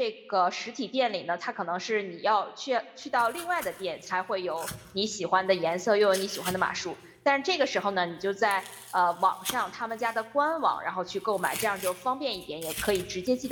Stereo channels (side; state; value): both; identical; correlation 1.00